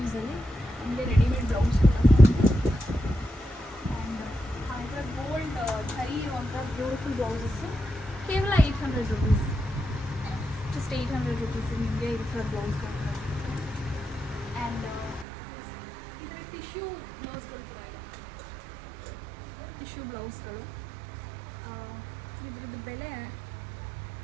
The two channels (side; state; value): left; drops out; at 15.2 s